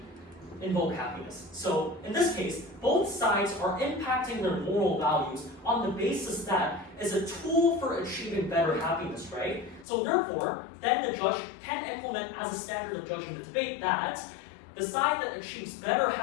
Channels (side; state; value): right; drops out; at 9.9 s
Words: invoke happiness. So in this case, both sides are impacting their moral values on the basis that is a tool for achieving better happiness, right? So therefore, then the judge can implement as a standard of judging the debate that the side that achieves better